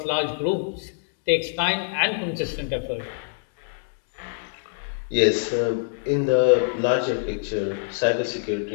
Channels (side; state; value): right; silent; digital silence